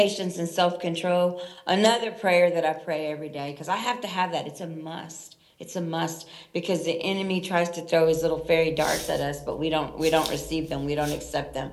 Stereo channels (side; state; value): both; identical; correlation 1.00